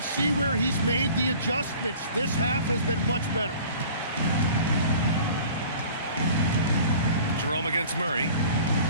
see where he's made the adjustments. This half has been much better. Jerome against Murray.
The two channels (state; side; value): inverted; both; correlation -0.46